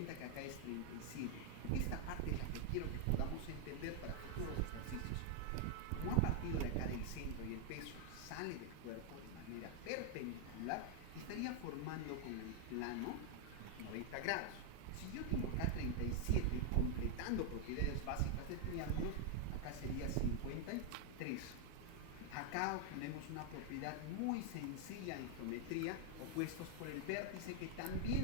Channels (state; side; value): different; both; correlation 0.00